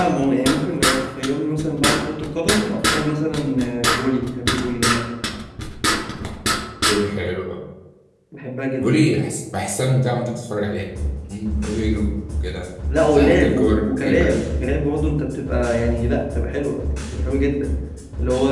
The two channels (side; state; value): both; identical; correlation 1.00